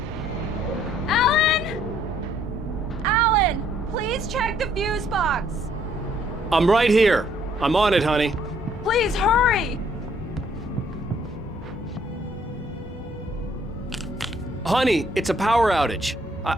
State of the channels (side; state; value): both; normal; correlation 0.65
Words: Alan! Alan, please check the fuse box. I'm right here. I'm on it, honey. Please hurry. Honey, it's a power outage.